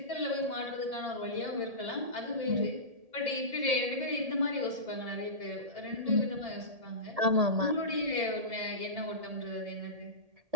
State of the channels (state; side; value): late; left; 1.7 ms